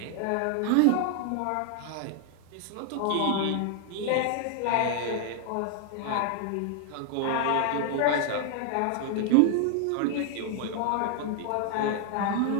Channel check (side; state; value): both; different; correlation 0.00